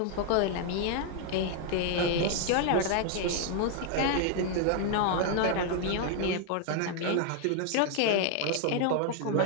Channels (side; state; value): both; different; correlation 0.01